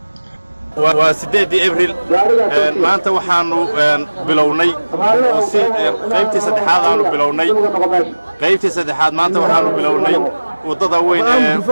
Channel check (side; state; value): both; inverted; correlation -1.00